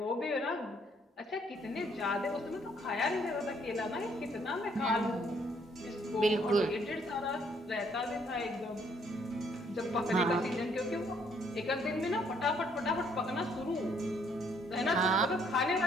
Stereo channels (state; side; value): normal; both; correlation 0.67